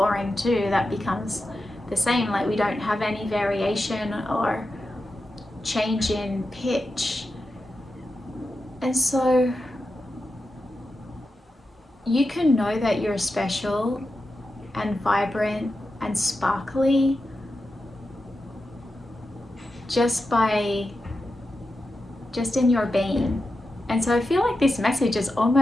too. That becomes the same. Like, we don't have any variation or change in pitch. And so you can know that you're special and vibrant and sparkly just in your being. And so I feel like this message is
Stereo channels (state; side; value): normal; both; correlation 0.90